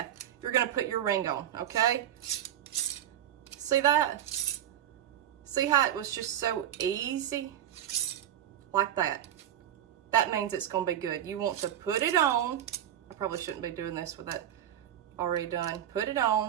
You're going to put your ring on, okay? See that? See how it was just so easy? Like that. That means it's going to be good. You want to put it on. I probably shouldn't be doing this with that already done. Put it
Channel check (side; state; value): left; quieter; 11.0 dB